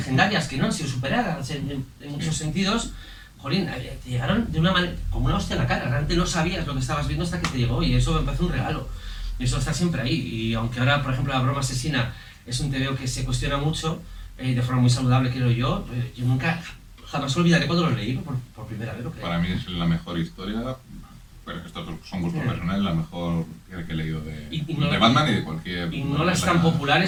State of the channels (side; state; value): both; identical; correlation 1.00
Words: que no han sido superadas en muchos sentidos, jolín, te llegaron de una manera, como una hostia en la cara. Realmente no sabías lo que estabas viendo hasta que te llegó, y eso me parece un regalo. Y eso está siempre ahí. Y aunque ahora, por ejemplo, La broma asesina es un TVO que se cuestiona mucho, de forma muy saludable, creo yo nunca, jamás olvidaré cuando lo leí por primera vez, lo creo. Para mí es la mejor historia, pero estos son gustos personales, la mejor que he leído de Batman y de cualquier... Y no las tan